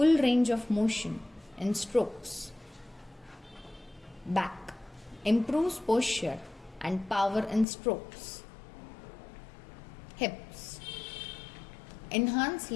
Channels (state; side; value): drops out; right; at 7.7 s